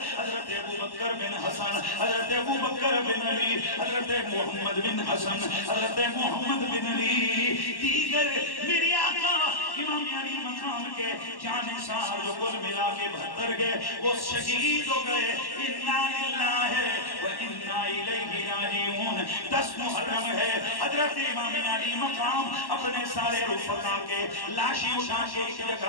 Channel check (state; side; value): late; right; 1.1 ms